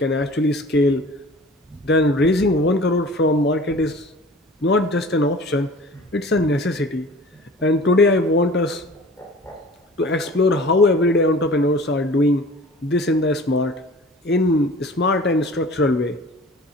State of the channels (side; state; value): both; normal; correlation 0.43